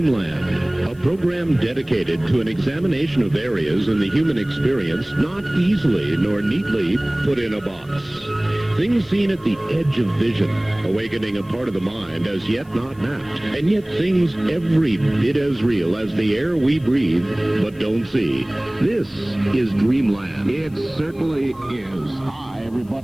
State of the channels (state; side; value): noise; left; hiss, 30 dB below the sound